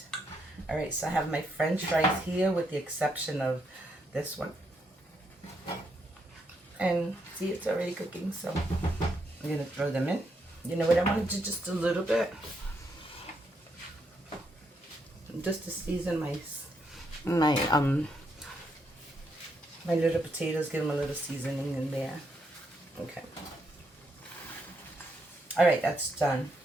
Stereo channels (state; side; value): normal; both; correlation 0.78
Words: Alright, so I have my French fries here with the exception of this one. And see, it's already cooking, so I'm going to throw them in. You know what, I want to do just a little bit. Just to season my little potatoes, give them a little seasoning in there. Okay. Alright, that's done.